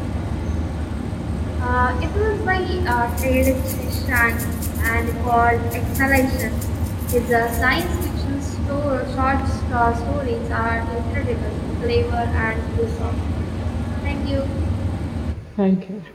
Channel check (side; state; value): both; identical; correlation 1.00